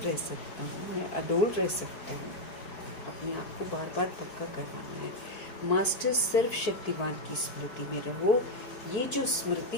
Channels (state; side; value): late; right; 4.6 ms